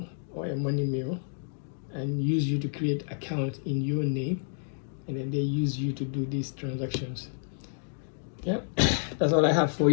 or a money mule, and use you to create accounts in your name, and then they use you to do these transactions. Yep, that's all I have for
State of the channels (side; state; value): right; silent; digital silence